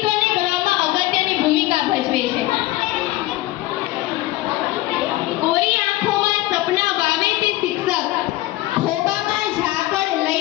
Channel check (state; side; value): quieter; right; 17.4 dB